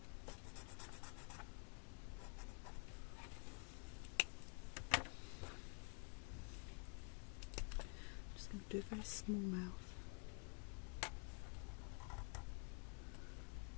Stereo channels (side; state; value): right; quieter; 39.2 dB